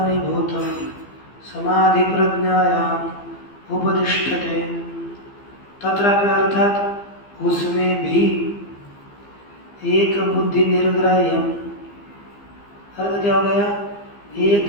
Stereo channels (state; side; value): late; right; 15 ms